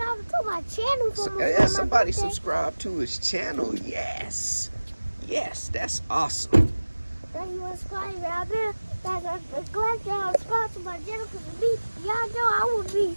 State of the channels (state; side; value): inverted; both; correlation -1.00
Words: to my channel. Yeah, somebody subscribe to his channel. Yes. Yes, that's awesome. Thank you for subscribing out there. Guys, I'm glad y'all subscribe to my channel because of me. Y'all know I will